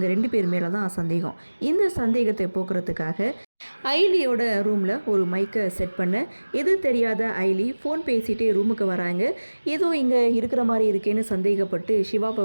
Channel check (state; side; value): inverted; both; correlation -1.00